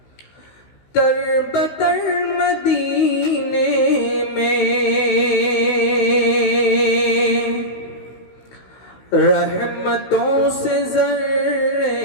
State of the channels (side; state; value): right; late; 16 ms